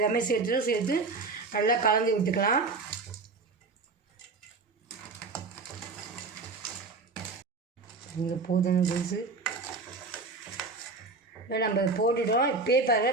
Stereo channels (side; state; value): left; quieter; 4.0 dB